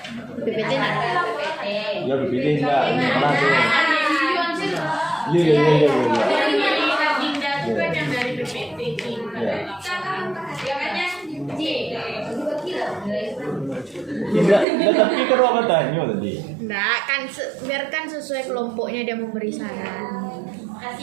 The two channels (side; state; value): left; drops out; at 14.7 s